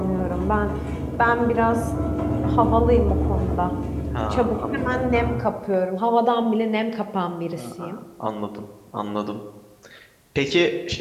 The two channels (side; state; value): both; identical; correlation 1.00